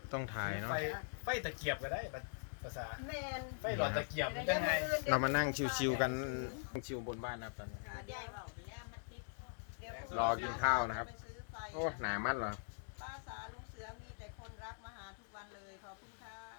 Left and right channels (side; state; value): right; silent; digital silence